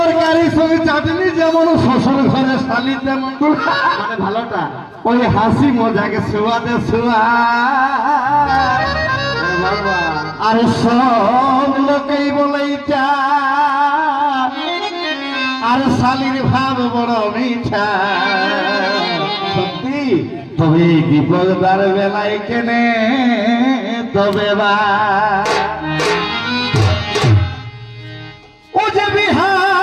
সঙ্গে চাটনি যেমন শ্বশুর ঘরে শালি তেমন মানে ভালোটা ওই হাসি মজাকে ছোঁয়াতে ছোঁয়া আর সব লোকেই বলেই চা আর শালির ভাব বড় মিঠা সত্যি তবে বিপদার বেলায় কেনে তবে বা ও যে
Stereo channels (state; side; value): identical; both; correlation 1.00